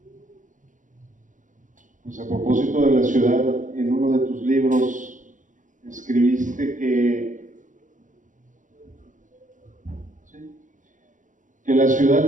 Pues a propósito de la ciudad, en uno de tus libros escribiste que la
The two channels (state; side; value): late; left; 0.37 ms